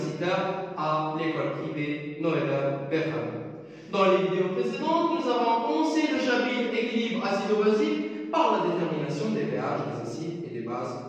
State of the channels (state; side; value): identical; both; correlation 1.00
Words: à l'école privée Noël Berham. Dans les vidéos précédentes, nous avons commencé le chapitre équilibre acido-basique par la détermination des pH des acides et des